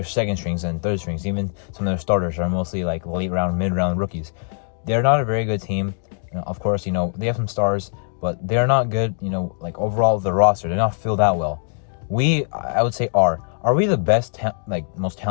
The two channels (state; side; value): silent; right; digital silence